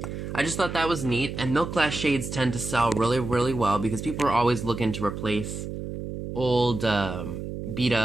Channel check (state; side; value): noise; right; hum, 7 dB below the sound